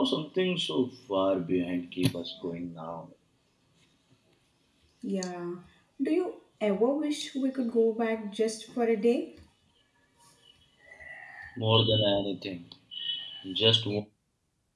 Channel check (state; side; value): identical; both; correlation 1.00